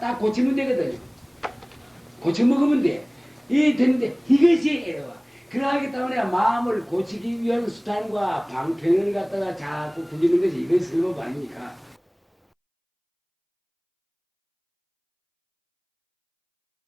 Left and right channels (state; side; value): identical; both; correlation 1.00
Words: 고치면 되거든요. 고쳐 먹으면 돼. 이 되는데 이것이 애로와. 그러하기 때문에 마음을 고치기 위한 수단과 방편을 갖다가 자꾸 부리는 것이 이것이 설법 아닙니까?